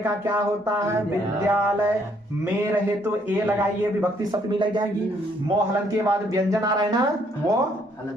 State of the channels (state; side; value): normal; both; correlation 0.68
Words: का क्या होता है? विद्यालय में रहे तो ए लगाइए, विभक्ति सप्तमी लग जाएगी। मोहलन के बाद व्यंजन आ रहा है ना, वो